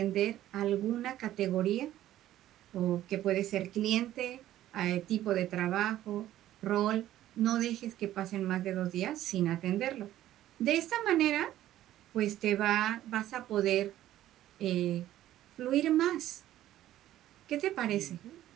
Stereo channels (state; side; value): quieter; left; 13.3 dB